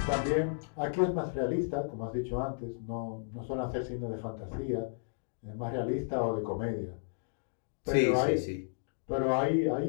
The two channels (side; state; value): right; silent; digital silence